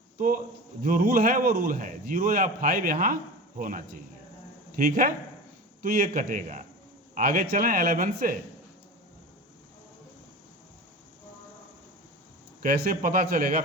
तो जो रूल है वो रूल है, 0 या 5 यहाँ होना चाहिए। ठीक है, तो ये कटेगा। आगे चलें 11 से। कैसे पता चलेगा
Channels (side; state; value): both; normal; correlation 0.31